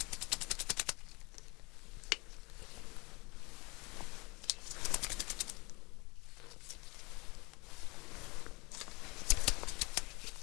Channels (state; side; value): quieter; right; 26.3 dB